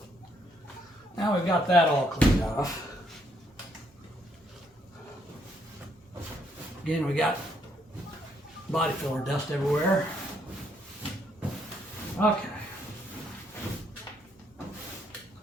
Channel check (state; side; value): normal; both; correlation 0.72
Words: Now we've got that all cleaned off. Again, we got body filler dust everywhere. Okay.